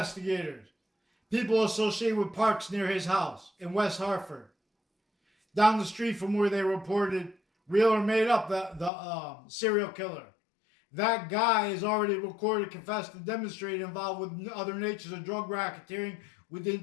people associated with parks near his house in West Hartford, down the street from where they reported real or made up the serial killer. That guy is already recorded, confessed, and demonstrated involved with other natures of drug racketeering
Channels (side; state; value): right; drops out; at 8.9 s